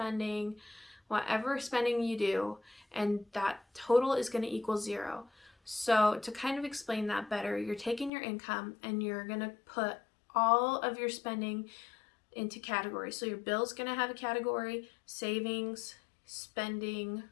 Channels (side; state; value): right; drops out; at 8.1 s